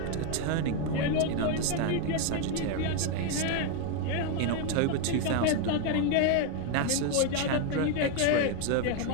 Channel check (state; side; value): different; both; correlation 0.01